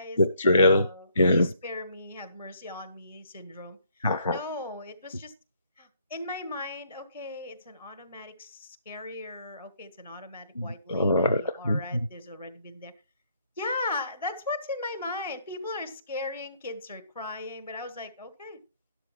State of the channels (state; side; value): inverted; both; correlation -0.67